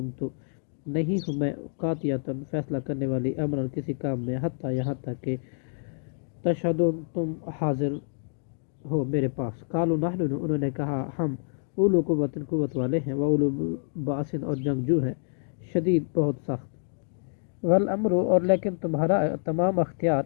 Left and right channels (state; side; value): silent; right; digital silence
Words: نہیں ہوں میں قاطعۃ فیصلہ کرنے والی، امرا کسی کام میں، حتیٰ یہاں تک کہ تشہدون تم حاضر ہو میرے پاس۔ قالوا نحن، انہوں نے کہا ہم اولو قوت والے ہیں، واولو بأس اور جنگجو ہیں، شدید بہت سخت، والامر اور لیکن تمہارا تمام اختیار